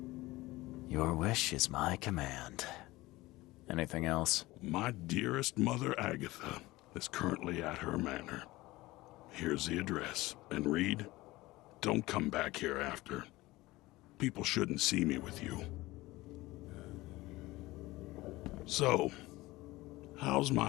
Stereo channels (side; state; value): right; quieter; 19.4 dB